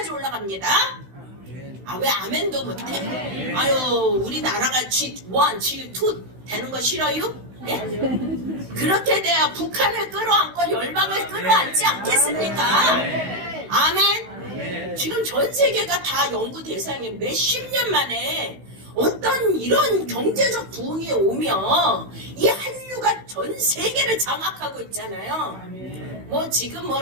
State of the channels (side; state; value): left; late; 16 ms